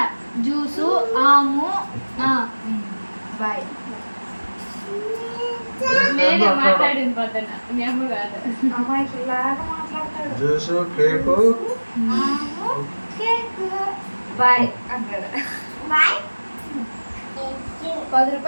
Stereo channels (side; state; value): both; inverted; correlation -1.00